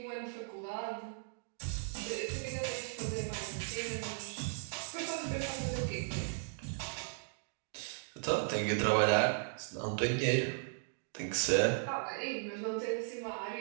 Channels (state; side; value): silent; left; digital silence